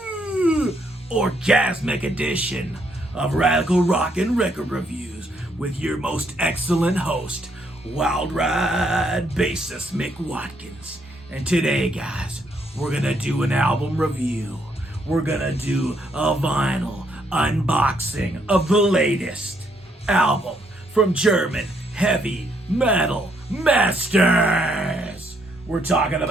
orgasmic edition of Radical Rock and Record Reviews with your most excellent host, Wild Ride bassist Mick Watkins. And today, guys, we're gonna do an album review. We're gonna do a vinyl unboxing of the latest album from German heavy metal masters. We're talking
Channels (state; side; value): normal; both; correlation 0.72